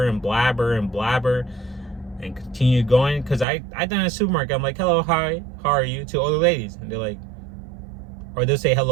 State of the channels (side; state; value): left; drops out; at 3.5 s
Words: and blabber and blabber and continue going. Because I done in a supermarket, I'm like, hello, hi, how are you? To older ladies. And they're like, or they'll say